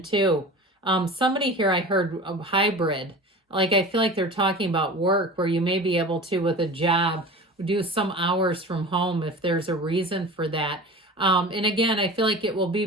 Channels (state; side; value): normal; both; correlation 0.36